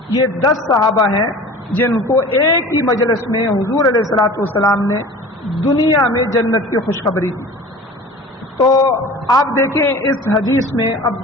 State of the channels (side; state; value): both; normal; correlation 0.40